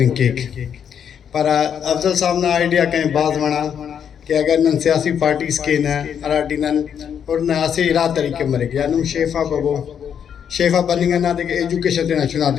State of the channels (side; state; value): right; quieter; 8.2 dB